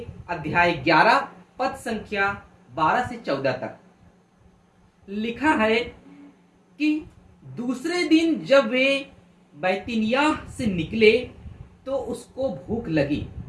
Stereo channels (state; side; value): identical; both; correlation 1.00